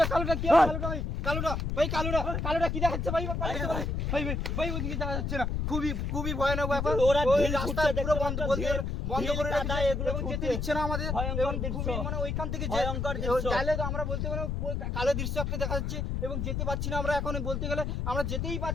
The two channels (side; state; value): left; noise; rumble, 1 dB below the sound